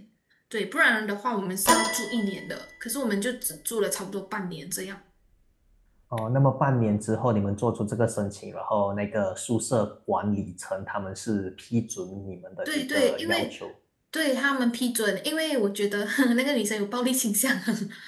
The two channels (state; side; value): identical; both; correlation 1.00